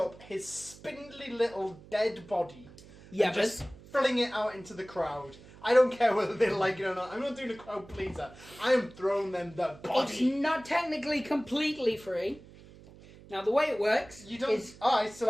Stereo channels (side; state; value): right; noise; hum, 21 dB below the sound